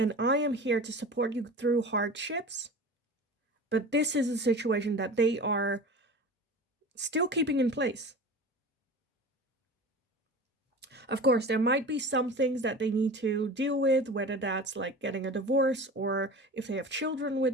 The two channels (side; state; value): both; normal; correlation 0.35